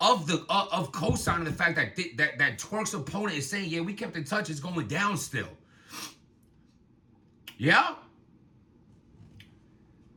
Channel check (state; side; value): identical; both; correlation 1.00